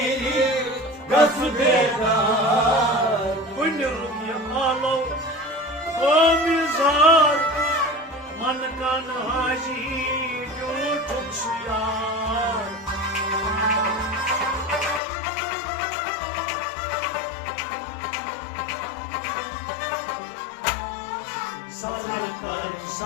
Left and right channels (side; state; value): right; drops out; at 15.0 s